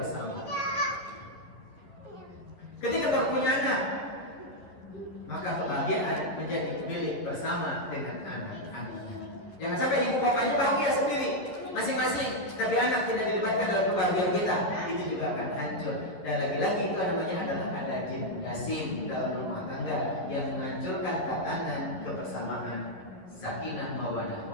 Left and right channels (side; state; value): right; late; 11 ms